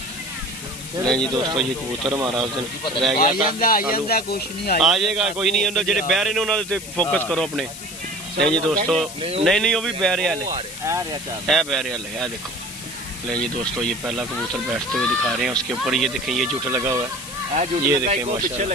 नहीं जी दोस्तों ये कबूतर हमारा उस दिन रह गया था। कुछ नहीं आ जाएगा कोई नहीं, जेडे बहरे ने उन्होंने फोकस करो अपने। नहीं जी दोस्तों नहीं वो भी बहरे वाले है, बहरे वाले है देखो। नहीं जी दोस्तों ये पहला कबूतर बैठते हुए दिखा रहे हैं। उसके ऊपर ये देखें ये जुट लगा हुआ है। ये देखें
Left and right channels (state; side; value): noise; left; hiss, 12 dB below the sound